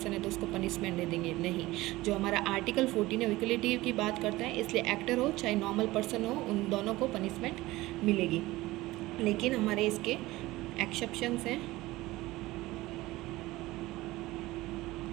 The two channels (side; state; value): left; quieter; 18.8 dB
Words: है तो उसको पनिशमेंट दे देंगे। नहीं, जो हमारा आर्टिकल 14 है इक्वलिटी की बात करता है, इसलिए एक्टर हो चाहे नॉर्मल पर्सन हो, उन दोनों को पनिशमेंट मिलेगी। लेकिन हमारे इसके एक्सेप्शंस हैं,